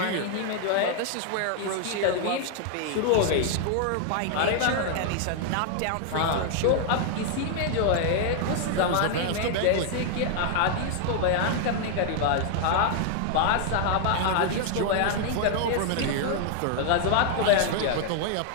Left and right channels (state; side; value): different; both; correlation 0.00